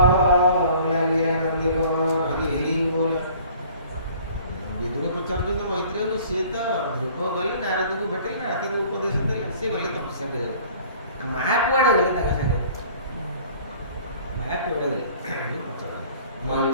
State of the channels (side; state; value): both; inverted; correlation -0.51